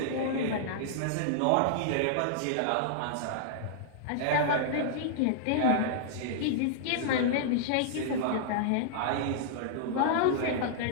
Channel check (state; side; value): different; both; correlation -0.01